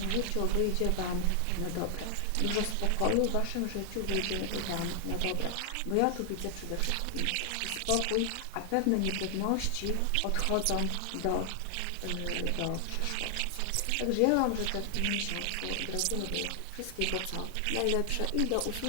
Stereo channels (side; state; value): both; different; correlation 0.00